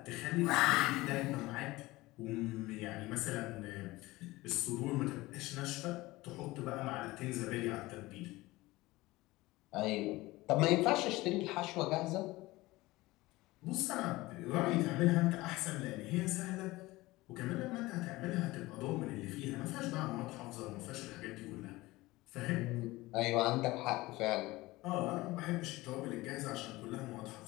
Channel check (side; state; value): right; quieter; 19.8 dB